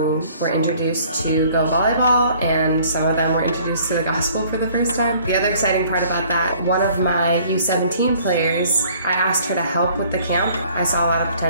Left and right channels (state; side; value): inverted; both; correlation -0.56